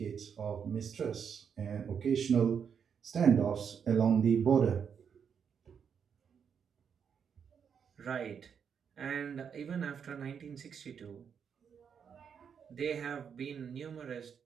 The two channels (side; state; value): left; quieter; 7.2 dB